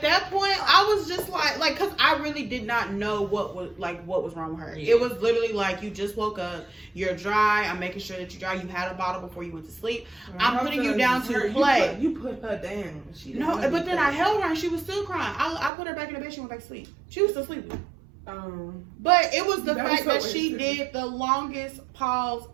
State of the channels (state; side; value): drops out; left; at 15.7 s